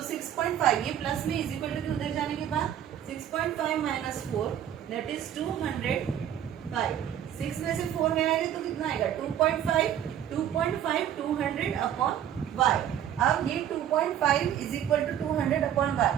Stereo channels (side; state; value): left; quieter; 10.3 dB